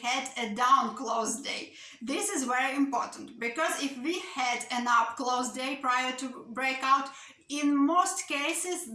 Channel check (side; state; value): both; identical; correlation 1.00